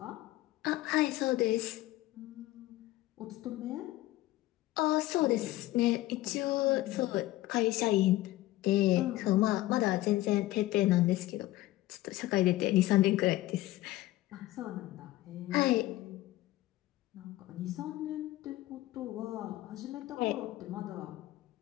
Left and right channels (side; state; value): right; quieter; 16.8 dB